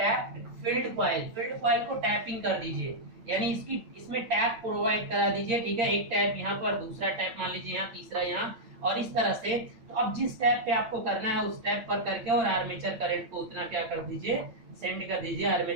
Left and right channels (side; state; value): left; late; 8.9 ms